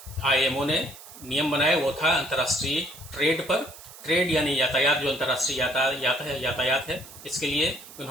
आईएमओ ने नियम बनाए वो था अंतर्राष्ट्रीय ट्रेड पर। ट्रेड यानी यातायात, जो अंतर्राष्ट्रीय यातायात है, इसके लिए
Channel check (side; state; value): right; noise; hiss, 17 dB below the sound